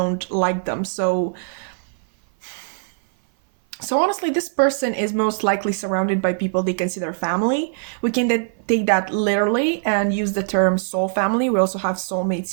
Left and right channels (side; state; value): left; silent; 56 dB below the other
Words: like them. So honestly, this person is most likely surrounded by people they consider family. We can take that literally and use the term soul family. We also have soulmates